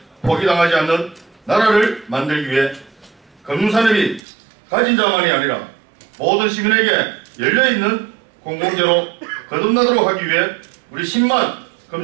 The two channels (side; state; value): left; drops out; at 4.2 s